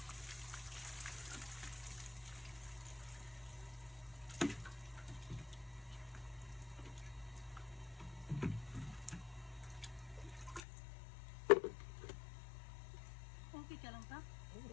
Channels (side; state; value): right; drops out; at 10.6 s